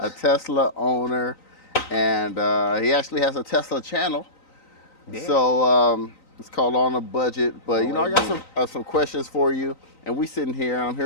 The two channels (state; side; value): late; right; 3.9 ms